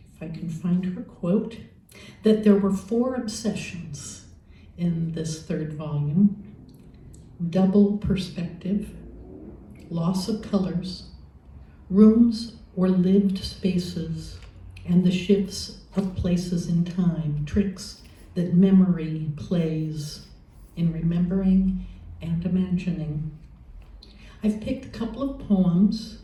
if I can find her quote, that there were 4 obsessions in this third volume: double perspective, loss of colors, rooms or lived spaces, and the shifts of places in time, tricks that memory plays in remembering and imagining. I've picked a couple of poems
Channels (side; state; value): both; identical; correlation 1.00